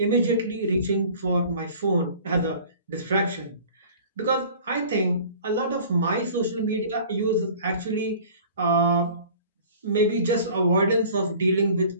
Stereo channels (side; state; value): both; inverted; correlation -0.46